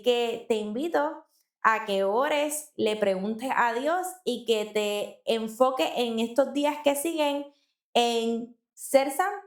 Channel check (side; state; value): both; identical; correlation 1.00